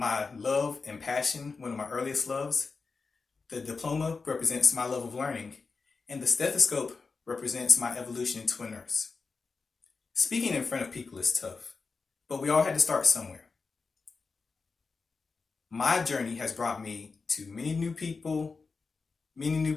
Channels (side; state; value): right; quieter; 4.5 dB